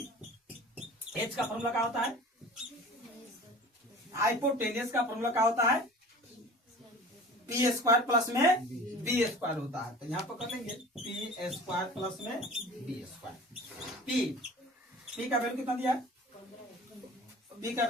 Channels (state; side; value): normal; both; correlation 0.41